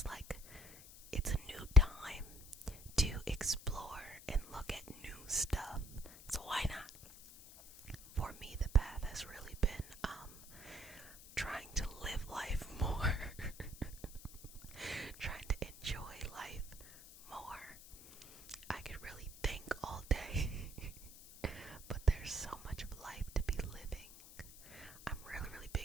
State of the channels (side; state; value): left; noise; hiss, 17 dB below the sound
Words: like it's a new time to explore and look at new stuff. So why not? For me, the path has really been trying to live life more, trying to enjoy life more. I could really think all day, but there's so much of life to be living. I'm really, really